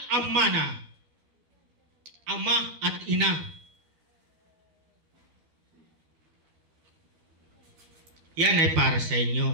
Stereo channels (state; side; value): late; left; 12 ms